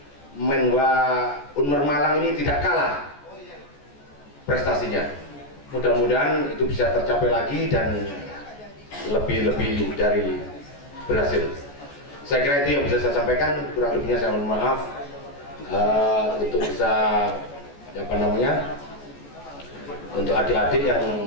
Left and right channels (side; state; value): right; late; 14 ms